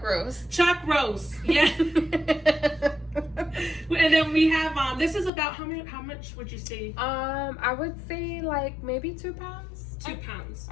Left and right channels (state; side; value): drops out; right; at 5.3 s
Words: roast. Chuck roast, yeah. And then we have this is about how much would you say? I would say like maybe 2 pounds. 2 pounds.